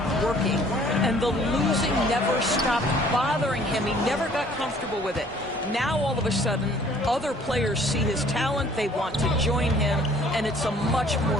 working, and the losing never stopped bothering him. He never got comfortable with it. Now, all of a sudden, other players see his talent, they want to join him, and it's a much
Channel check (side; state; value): both; normal; correlation 0.56